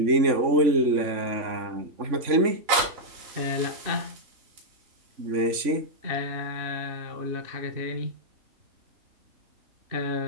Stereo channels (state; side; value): late; left; 3.5 ms